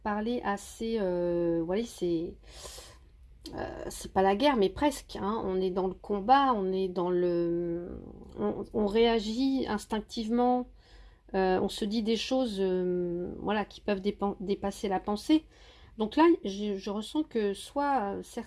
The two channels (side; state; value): both; identical; correlation 1.00